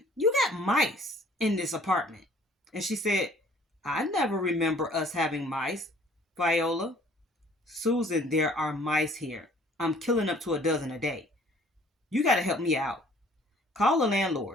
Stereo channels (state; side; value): normal; both; correlation 0.56